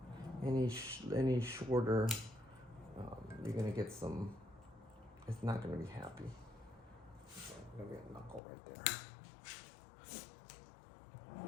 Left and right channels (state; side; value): drops out; right; at 8.4 s